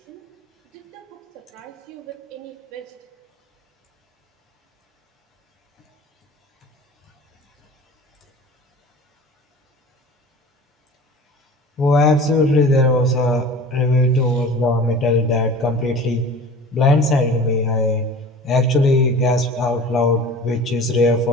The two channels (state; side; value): normal; both; correlation 0.40